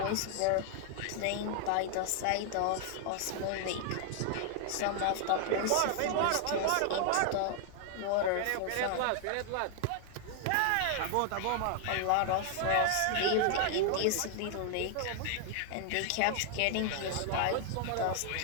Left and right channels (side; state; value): both; different; correlation 0.00